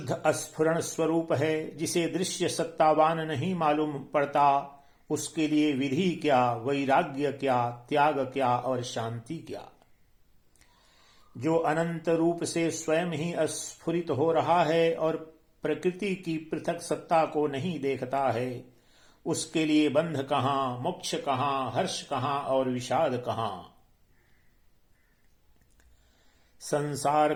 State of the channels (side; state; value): both; identical; correlation 1.00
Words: अस्फुरण स्वरूप है, जिसे दृश्य सत्तावान नहीं मालूम पड़ता, उसके लिए विधि क्या, वैराग्य क्या, त्याग क्या और शांति क्या। जो अनंत रूप से स्वयं ही अस्फुरित हो रहा है और प्रकृति की पृथक सत्ता को नहीं देखता है, उसके लिए बंध कहाँ, मोक्ष कहाँ, हर्ष कहाँ और विषाद कहाँ। संसार